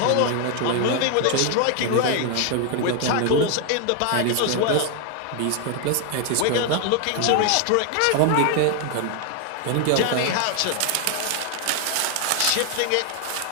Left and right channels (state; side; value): different; both; correlation 0.00